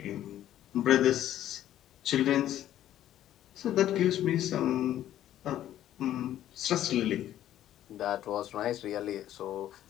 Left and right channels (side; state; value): right; quieter; 12.2 dB